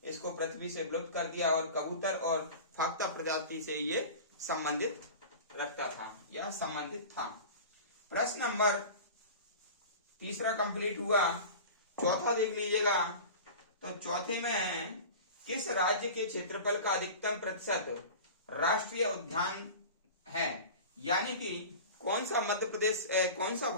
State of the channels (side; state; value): both; inverted; correlation -0.35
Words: इसको पृथ्वी से विलुप्त कर दिया और कबूतर और फाख्ता प्रजाति से ये संबंधित रखता था या संबंधित था। प्रश्न नंबर तीसरा कंप्लीट हुआ। चौथा देख लीजिएगा। तो चौथे में किस राज्य के क्षेत्रफल का अधिकतम प्रतिशत राष्ट्रीय उद्यान है? यानी कि कौन सा मध्य प्रदेश कौन सा